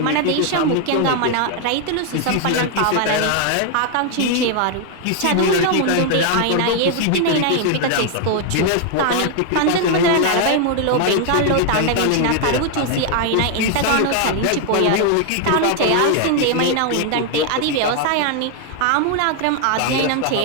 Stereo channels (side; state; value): both; different; correlation 0.00